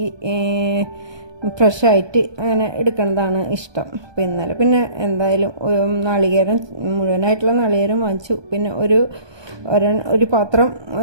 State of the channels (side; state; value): left; late; 1.2 ms